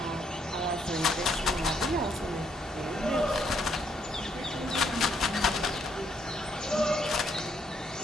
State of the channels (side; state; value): both; normal; correlation 0.72